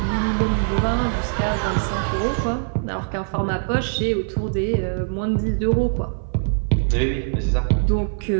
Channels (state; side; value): silent; left; 57 dB below the other